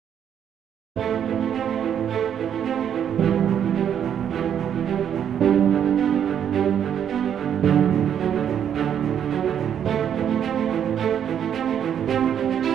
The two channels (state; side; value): quieter; left; 9.0 dB